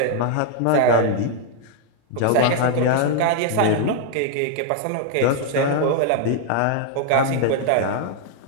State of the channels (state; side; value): different; both; correlation 0.00